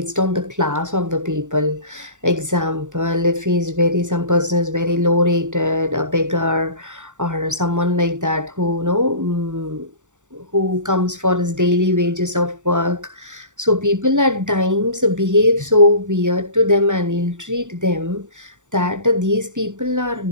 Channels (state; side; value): late; left; 0.86 ms